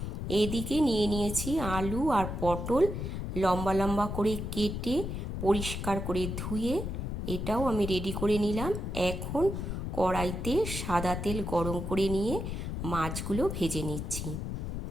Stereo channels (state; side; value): noise; left; rumble, 4 dB below the sound